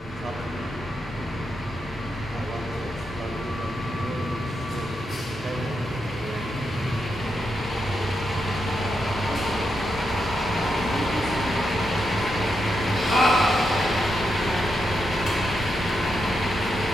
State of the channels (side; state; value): both; normal; correlation 0.84